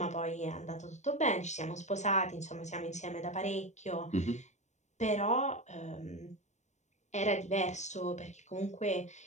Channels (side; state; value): right; late; 0.34 ms